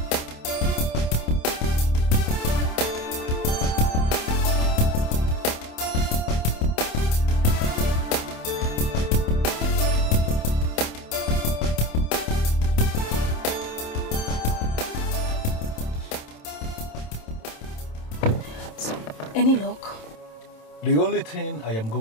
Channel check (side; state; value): right; late; 27 ms